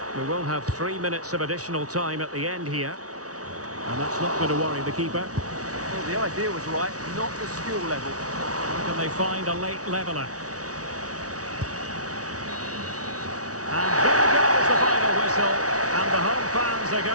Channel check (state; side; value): late; left; 0.67 ms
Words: We will have 3 minutes of additional time at the end here. And that's not going to worry the keeper. Well, the idea was right, not the skill level. Can they find a late leveller? And there goes the final whistle. And the home fans are